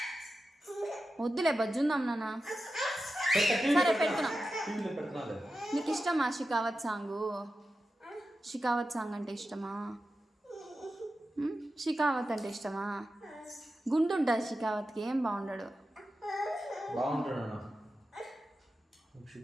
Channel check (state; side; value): normal; both; correlation 0.92